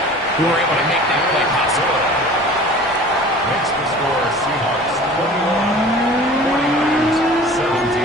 who were able to make that play possible. Makes the score Seahawks 21.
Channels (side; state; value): both; normal; correlation 0.43